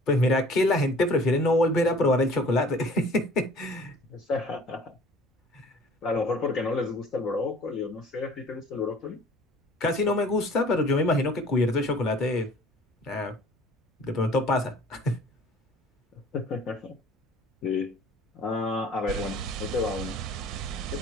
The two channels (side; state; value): both; normal; correlation 0.50